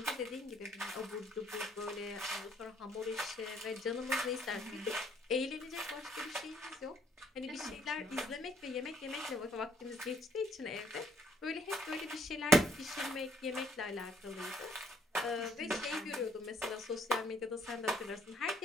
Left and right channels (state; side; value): normal; both; correlation 0.67